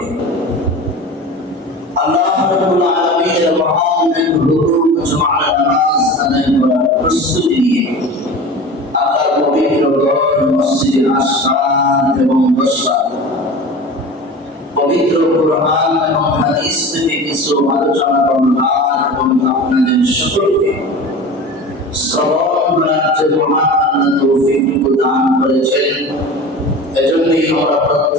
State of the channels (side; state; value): both; normal; correlation 0.35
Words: আল্লাহ রাব্বুল আলামিনের মহান এক হুকুম জুমার নামাজ আদায় করার প্রস্তুতি নিয়ে আল্লাহর পবিত্র ঘর মসজিদে আসলাম এবং বসলাম। পবিত্র কুরআন এবং হাদিস থেকে কিছু আলোচনা করলাম এবং আপনাদের সকলকে শ্রবণ করার যে মহান আল্লাহ তৌফিক দান করেছেন, এজন্যই আমরা